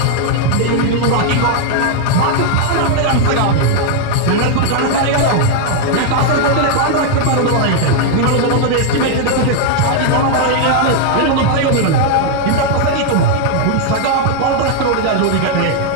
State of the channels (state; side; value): different; both; correlation 0.00